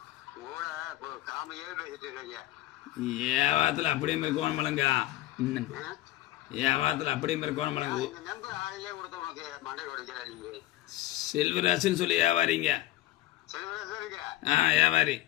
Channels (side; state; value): right; quieter; 15.9 dB